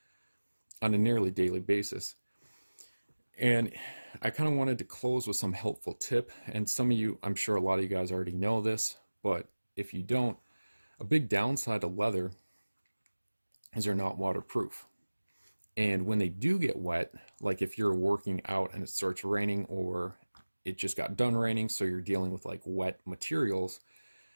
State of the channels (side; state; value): both; inverted; correlation -1.00